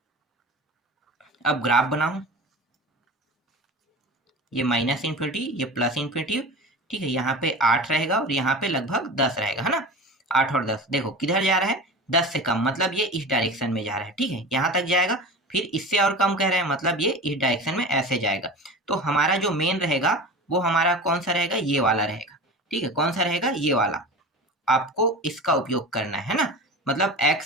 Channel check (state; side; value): normal; both; correlation 0.32